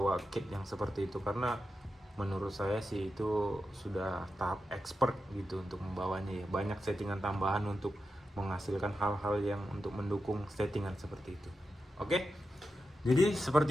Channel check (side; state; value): both; normal; correlation 0.89